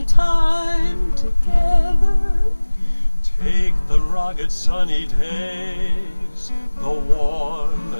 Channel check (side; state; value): both; inverted; correlation -1.00